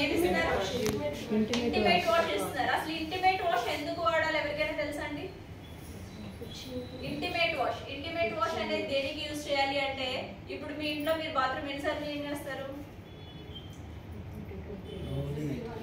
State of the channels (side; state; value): both; identical; correlation 1.00